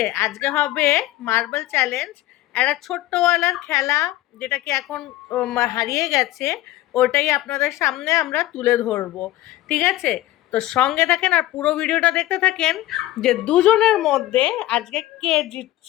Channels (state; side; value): quieter; right; 15.7 dB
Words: আজকে হবে মার্বেল চ্যালেঞ্জ, একটা ছোট্টওয়ালার খেলা, যেটা কি এখন হারিয়ে গেছে। ওটাই আপনাদের সামনে আমরা তুলে ধরবো, ঠিক আছে? তো সঙ্গে থাকেন আর পুরো ভিডিওটা দেখতে থাকেন যে দুজনের মধ্যে আজকে কে